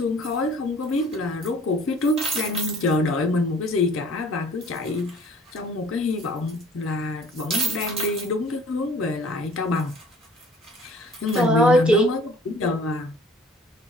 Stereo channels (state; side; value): normal; both; correlation 0.52